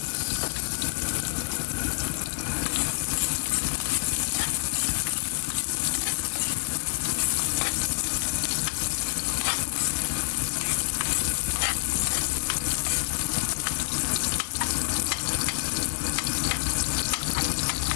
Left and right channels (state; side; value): silent; right; 60 dB below the other